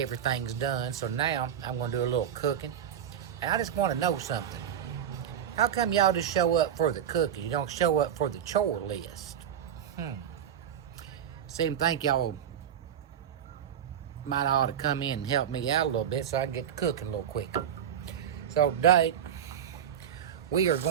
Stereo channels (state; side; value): quieter; left; 9.3 dB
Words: done, so now I'm going to do a little cooking. And I just want to know something. How come y'all just show up for the cooking? You don't show up for the chore list? Seem to think y'all might ought to come in and help me out a little bit so I can get to cooking a little quicker. So today, we are